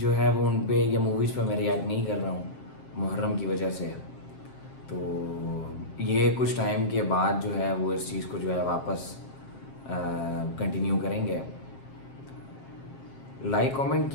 ہے وہ ان پہ یا موویز پہ میں ریئیکٹ نہیں کر رہا ہوں محرم کی وجہ سے. تو یہ کچھ ٹائم کے بعد جو ہے وہ اس چیز کو جو ہے واپس کنٹینیو کریں گے. لائک کامنٹ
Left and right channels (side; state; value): right; late; 7.5 ms